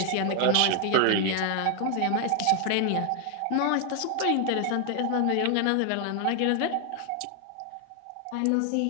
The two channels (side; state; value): both; different; correlation 0.00